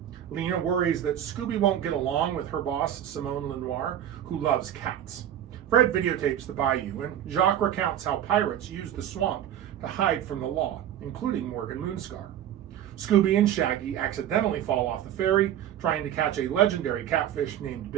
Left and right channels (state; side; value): quieter; left; 10.8 dB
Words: Lena worries that Scooby won't get along with her boss, Simone Lenoir, who loves cats. Fred videotapes the bayou, and Jacques recounts how pirates used the swamp to hide from the law, including Morgan Moonscar. Scooby and Shaggy accidentally fall off the ferry, trying to catch a legendary catfish named